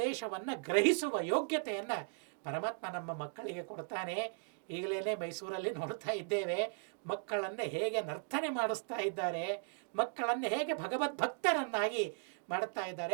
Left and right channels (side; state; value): left; silent; 53 dB below the other